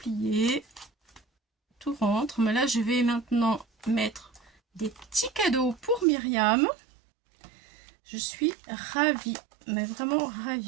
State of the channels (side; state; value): left; drops out; at 6.1 s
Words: Tout rentre. Mais là, je vais maintenant mettre des petits cadeaux pour Myriam. Je suis ravie, mais vraiment